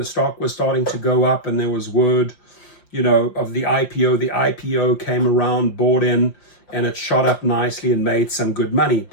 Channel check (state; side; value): late; right; 5.7 ms